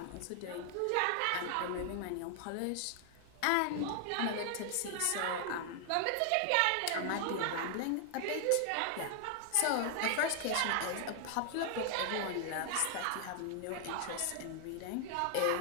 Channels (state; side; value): different; both; correlation 0.00